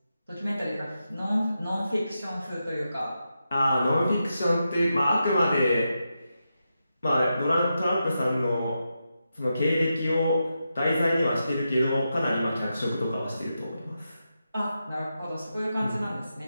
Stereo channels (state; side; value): inverted; both; correlation -0.87